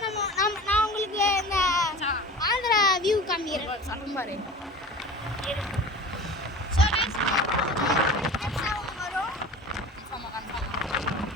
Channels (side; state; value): both; normal; correlation 0.37